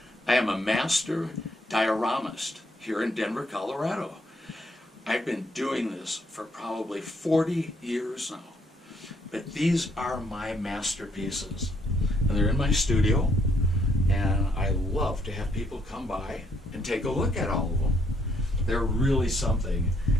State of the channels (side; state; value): both; normal; correlation 0.71